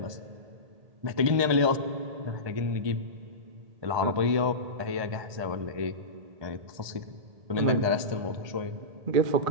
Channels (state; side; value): late; left; 1.2 ms